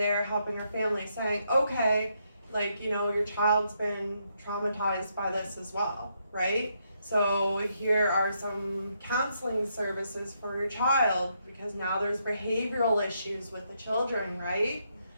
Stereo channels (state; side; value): inverted; both; correlation -0.77